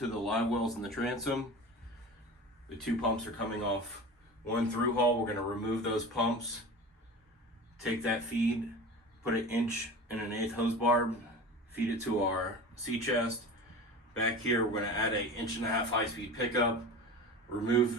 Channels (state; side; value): normal; both; correlation 0.33